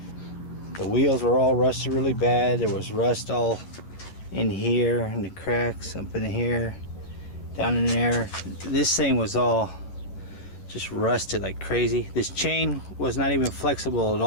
The wheels were all rusted really bad. There was rust all in here, and the cracks up in here, down in there. This thing was all just rusted like crazy. This chain was not even flexible at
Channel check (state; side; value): late; right; 11 ms